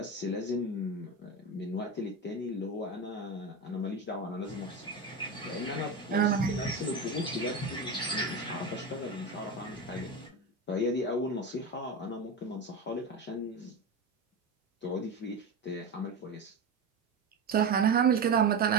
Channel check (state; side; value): quieter; left; 3.2 dB